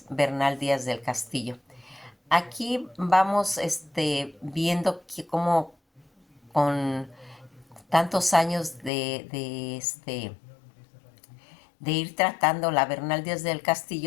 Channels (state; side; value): drops out; right; at 8.9 s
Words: Bernal Díaz del Castillo. Aquí vamos viendo que como con tantos años de ir tratando la Bernal Díaz del